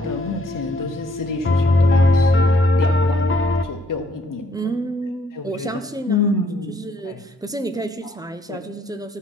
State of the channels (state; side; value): normal; both; correlation 0.67